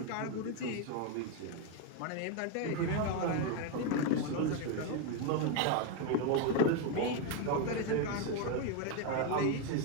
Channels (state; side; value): different; both; correlation 0.01